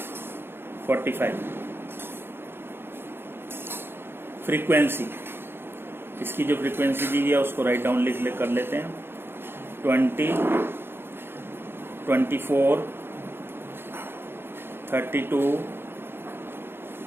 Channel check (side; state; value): left; late; 0.11 ms